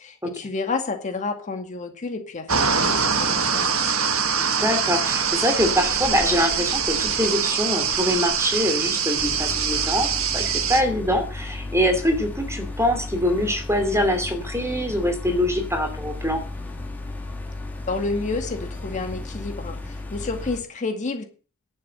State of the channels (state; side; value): normal; both; correlation 0.31